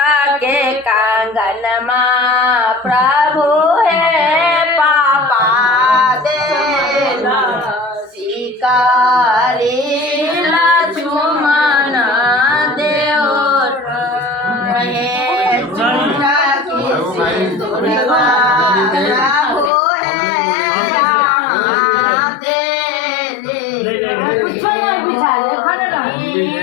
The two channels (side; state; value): right; drops out; at 19.7 s